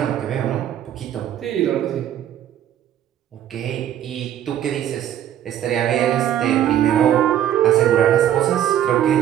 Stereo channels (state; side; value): quieter; left; 11.0 dB